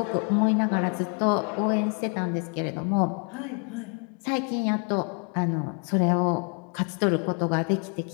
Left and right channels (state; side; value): quieter; right; 38.7 dB